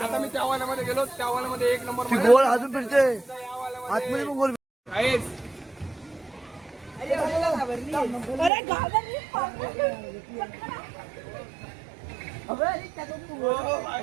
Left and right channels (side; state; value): left; drops out; at 8.5 s